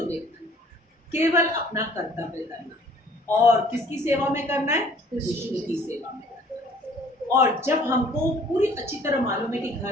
देखना? केवल अपना कर्तव्य करना। और किसकी सेवा में करना है? कृष्ण की सेवा में। और जब हमको पूरी अच्छी तरह मालूम है कि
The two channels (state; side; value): normal; both; correlation 0.55